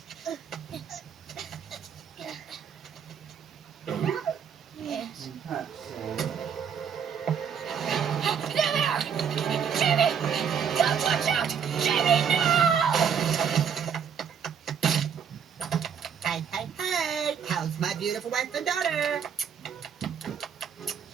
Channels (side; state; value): left; quieter; 7.5 dB